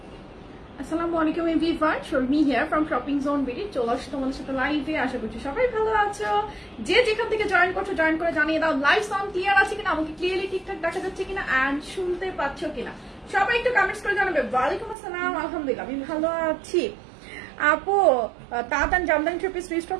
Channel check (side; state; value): left; drops out; at 15.0 s